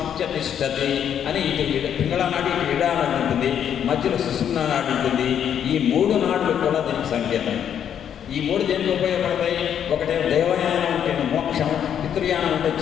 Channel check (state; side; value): quieter; right; 9.0 dB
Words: తిష్టతి అని ఇటు పింగళ నాడు ఇటు ఇడానాడు ఉంటుంది, మధ్యలో సుషుమ్నా నాడు ఉంటుంది. ఈ మూడు నాడులు కూడా దీనికి సంకేతం. ఈ మూడు దేనికి ఉపయోగపడతాయి? ఒకటే దేవయానం అంటే మోక్షం, పితృయానం అంటే